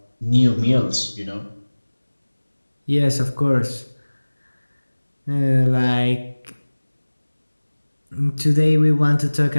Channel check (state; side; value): inverted; both; correlation -1.00